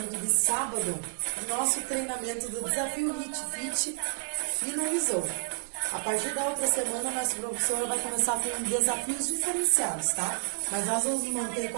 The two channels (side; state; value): left; silent; digital silence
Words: de sábado. O nosso treinamento do Desafio HIIT Fit finalizou. A partir da outra semana, nossa professora vai começar com desafios diferenciados, tá? Mas nós vamos manter